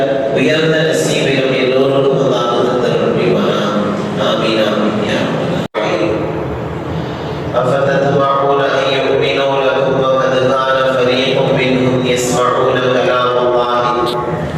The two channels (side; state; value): both; identical; correlation 1.00